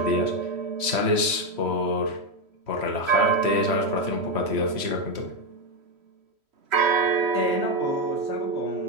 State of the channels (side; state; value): left; late; 3.1 ms